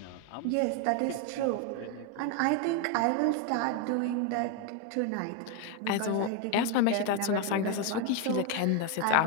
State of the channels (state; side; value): different; both; correlation 0.01